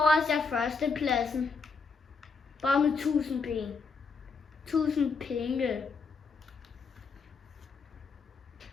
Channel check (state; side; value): quieter; right; 4.7 dB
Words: jeg førstepladsen. Bare med 1000 penge. 1000 penge.